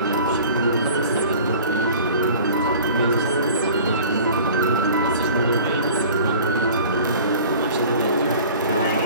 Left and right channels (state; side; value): inverted; both; correlation -0.44